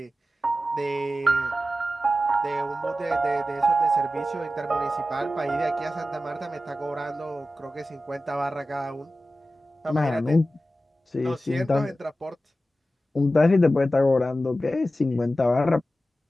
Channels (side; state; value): both; normal; correlation 0.94